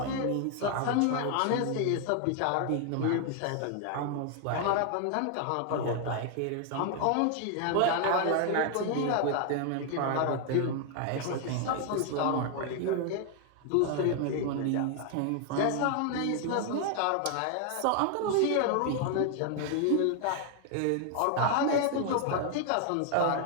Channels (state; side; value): different; both; correlation 0.00